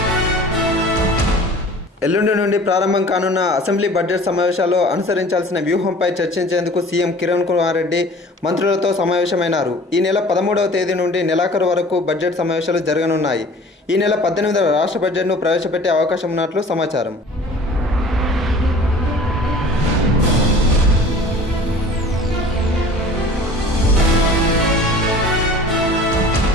ఎల్లుండి నుండి ప్రారంభం కానున్న అసెంబ్లీ బడ్జెట్ సమావేశాల్లో అనుసరించాల్సిన వ్యూహంపై చర్చించేందుకు సీఎం కిరణ్ కుమార్ రెడ్డి మంత్రులతో సమావేశమైనారు. ఈ నెల 13వ తేదీ నుండి నెలాఖరు వరకు బడ్జెట్ సమావేశాలు జరగనున్నాయి. ఈ నెల 18వ రాష్ట్ర బడ్జెట్ను ప్రవేశపెట్టే అవకాశం ఉన్నట్లు సమాచారం.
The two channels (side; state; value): both; normal; correlation 0.45